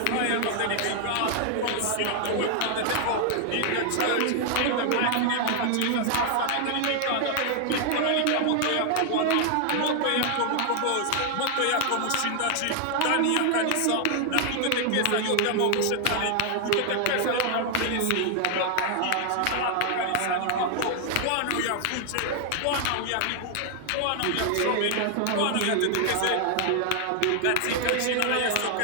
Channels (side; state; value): both; different; correlation 0.00